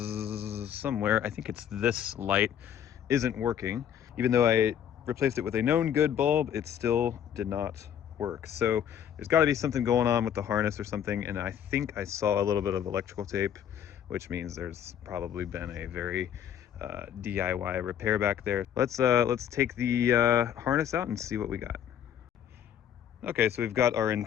somewhere, I think it's this light, isn't working. Even though I replaced it with a known good bulb, it still did not work. So there's got to be something going on with the harness or something, and I think I saw a little bit of electrical tape, which means there's probably been a very DIY repair back there. Let's take the harness out and see what we got. Okay, so we've got our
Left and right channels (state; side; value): quieter; right; 9.5 dB